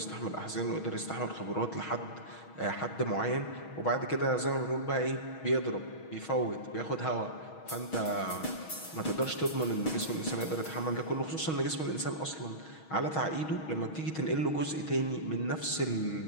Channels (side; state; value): right; late; 6.3 ms